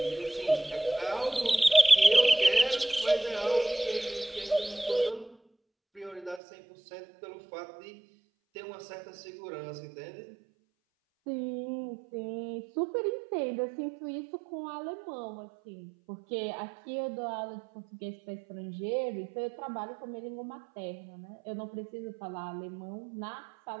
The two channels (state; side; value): drops out; left; at 6.4 s